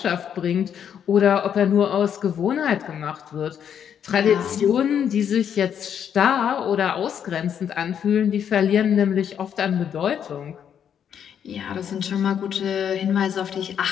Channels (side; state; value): right; quieter; 8.6 dB